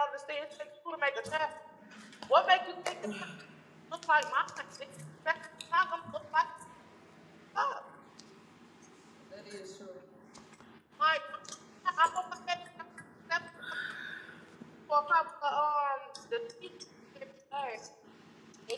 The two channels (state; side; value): identical; both; correlation 1.00